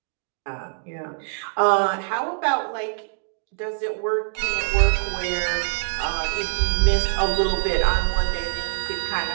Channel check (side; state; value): left; silent; digital silence